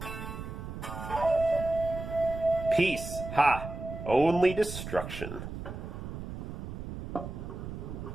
Peace. Ha. Only destruction.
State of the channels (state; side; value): noise; right; rumble, 8 dB below the sound